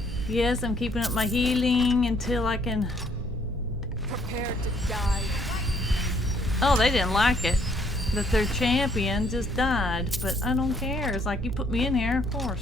Yes, I'm keeping up my healing until I can... Prepare to die. Oh, they didn't like it that their champion just died, but I don't care. It's like, you put me in here, of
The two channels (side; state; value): both; normal; correlation 0.66